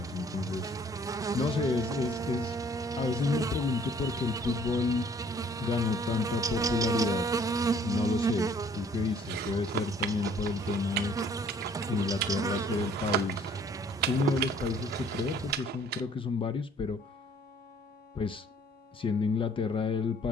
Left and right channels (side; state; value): both; normal; correlation 0.58